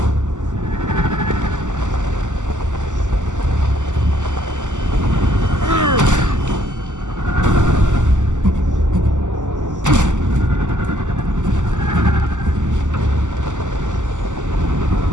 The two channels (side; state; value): left; late; 0.85 ms